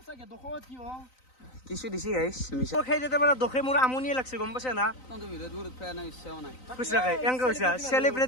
দখত কি হ কিছু দিছি গাইছ মিছা সেই যেতে মানে দখে মোৰ আমনিয়ে লাগছে গম পাইছে না তহঁতে ভিডিঅ' দূৰত পেয়া নাই ইচ্ছাও নাই খুচৰাকে এংকে হৈছে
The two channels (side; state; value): right; late; 3.9 ms